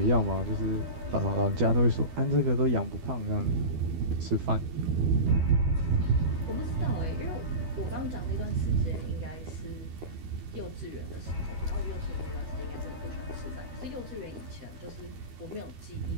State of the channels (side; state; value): left; late; 12 ms